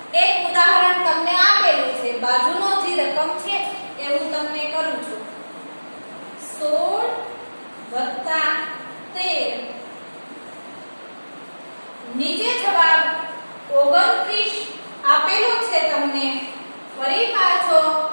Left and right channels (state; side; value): inverted; both; correlation -1.00